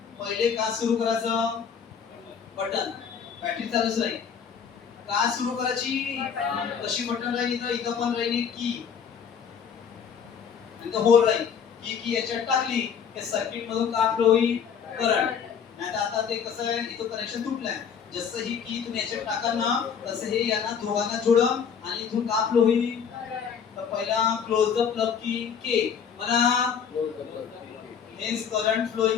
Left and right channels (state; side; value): quieter; right; 7.1 dB